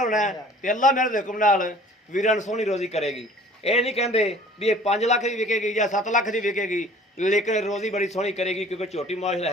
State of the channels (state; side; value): normal; both; correlation 0.50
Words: ਤੇ ਅੱਲਾਹ ਮੇਰੇ ਦੇ ਹੁਕਮ ਨਾਲ ਵੀਰਾਂ ਨੂੰ ਸੋਹਣੀ ਰੋਜ਼ੀ ਕਰੇਗੀ। ਇਹ ਨਹੀਂ ਕਹਿੰਦੇ ਵੀ ਇਹ 5 ਲੱਖ ਦੀ ਵਿਕੇਗੀ ਜਾਂ 7 ਲੱਖ ਦੀ ਵਿਕੇਗੀ, ਲੇਕਿਨ ਰੋਜ਼ੀ ਬੜੀ ਸੋਹਣੀ ਕਰੇਗੀ ਕਿਉਂਕਿ ਝੋਟੀ ਮਾਸ਼ਾਅੱਲਾ